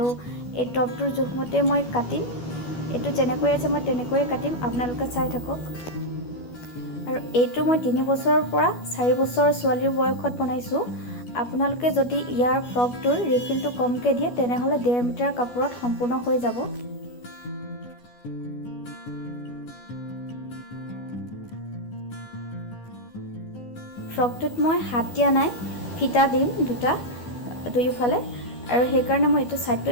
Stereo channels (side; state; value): right; late; 12 ms